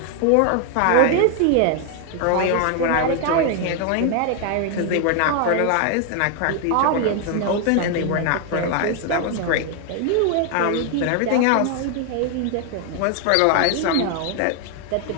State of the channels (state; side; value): different; both; correlation 0.00